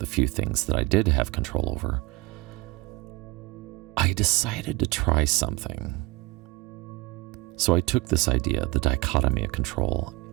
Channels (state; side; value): quieter; left; 20.0 dB